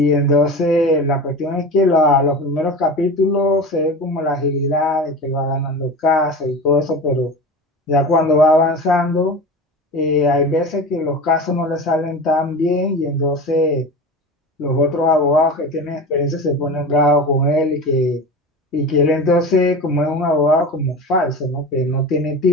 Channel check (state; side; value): normal; both; correlation 0.30